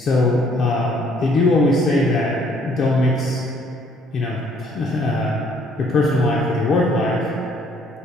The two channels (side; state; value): both; normal; correlation 0.63